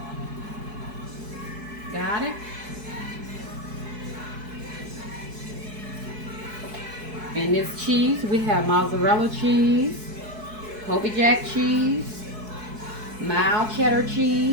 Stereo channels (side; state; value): left; late; 4.7 ms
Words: Got it? In this cheese, we have mozzarella cheese, Colby Jack cheese, mild cheddar